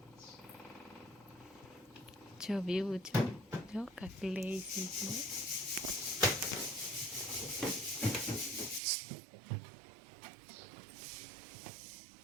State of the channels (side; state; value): left; drops out; at 8.8 s